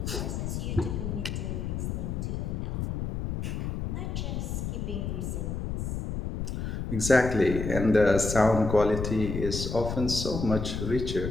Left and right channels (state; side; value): noise; left; rumble, 3 dB below the sound